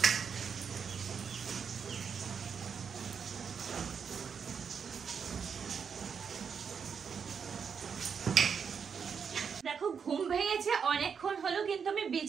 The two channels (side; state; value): left; quieter; 6.5 dB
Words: দেখো ঘুম ভেঙেছে অনেকক্ষণ হলো, কিন্তু আমি